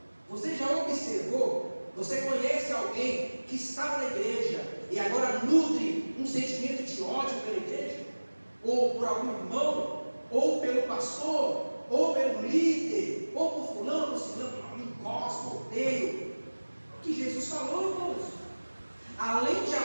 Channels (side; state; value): both; inverted; correlation -1.00